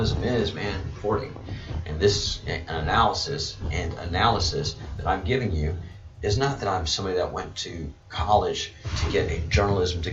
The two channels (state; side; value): identical; both; correlation 1.00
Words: is, man, reporting. And this analysis that I'm giving you is not that I'm somebody that went to college to get a journalism